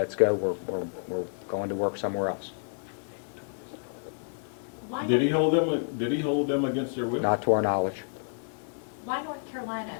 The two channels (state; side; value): silent; right; digital silence